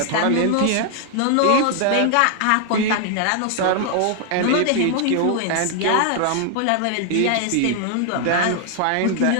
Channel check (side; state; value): both; different; correlation 0.00